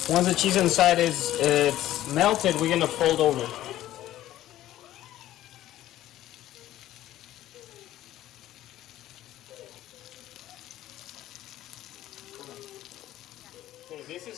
Once the cheese inside it's melted, we're gonna fold over. Okay, this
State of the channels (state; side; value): quieter; right; 13.9 dB